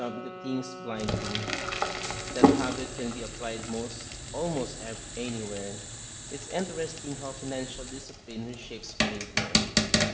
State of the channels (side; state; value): both; identical; correlation 1.00